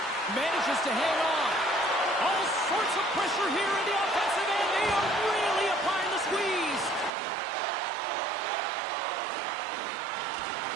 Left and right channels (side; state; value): left; drops out; at 7.1 s